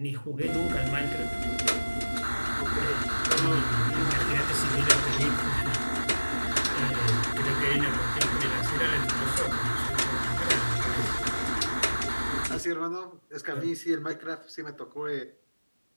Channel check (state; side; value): inverted; both; correlation -1.00